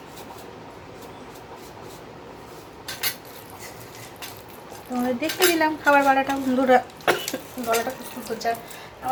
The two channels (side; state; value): both; identical; correlation 1.00